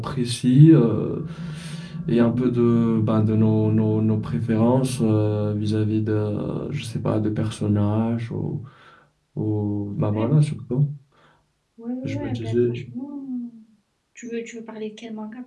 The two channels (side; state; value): both; identical; correlation 1.00